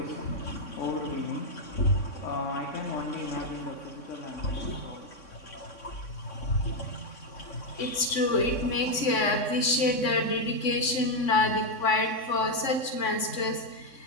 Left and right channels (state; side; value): late; right; 3.6 ms